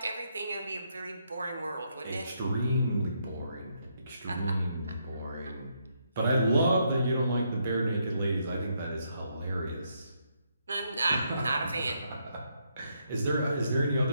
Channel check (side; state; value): both; inverted; correlation -0.76